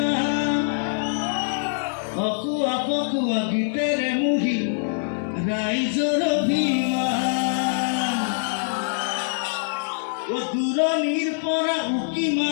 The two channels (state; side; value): silent; right; 63 dB below the other